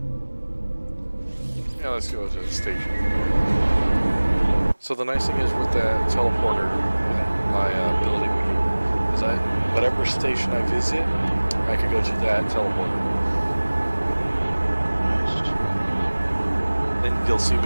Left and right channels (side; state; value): both; inverted; correlation -1.00